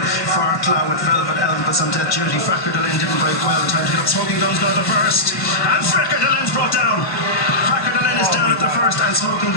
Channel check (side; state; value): right; late; 1.2 ms